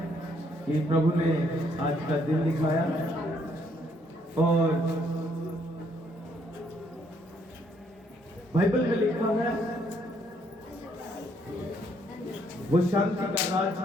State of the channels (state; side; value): normal; both; correlation 0.69